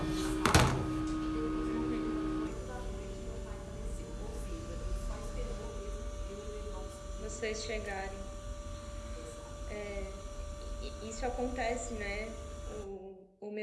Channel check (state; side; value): identical; both; correlation 1.00